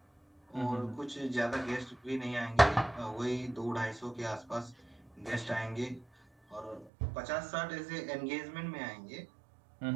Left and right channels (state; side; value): drops out; left; at 6.9 s